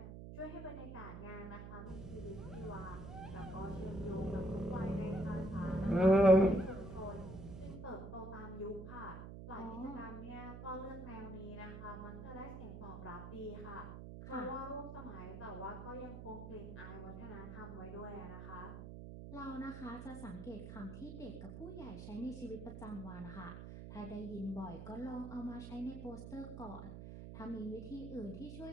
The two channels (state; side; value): noise; right; hum, 9 dB below the sound